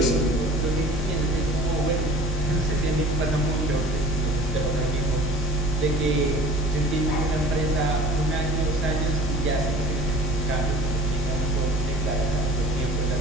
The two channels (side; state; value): both; normal; correlation 0.45